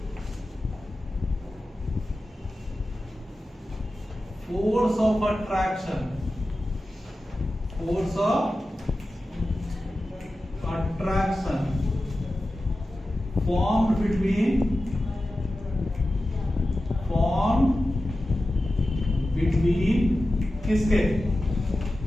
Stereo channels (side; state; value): both; normal; correlation 0.94